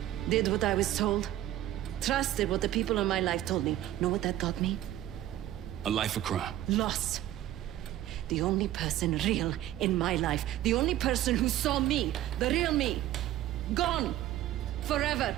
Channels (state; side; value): quieter; left; 13.4 dB